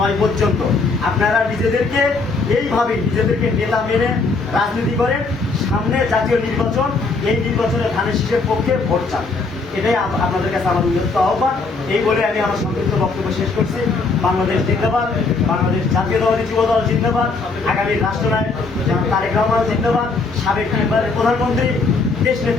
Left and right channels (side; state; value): right; quieter; 4.0 dB